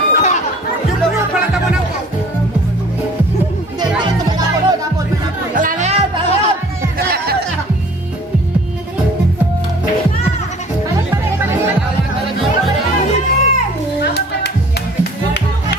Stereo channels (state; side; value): normal; both; correlation 0.50